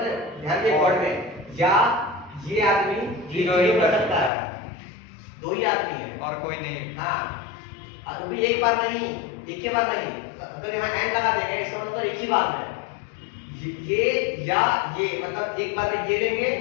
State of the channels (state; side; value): drops out; right; at 4.3 s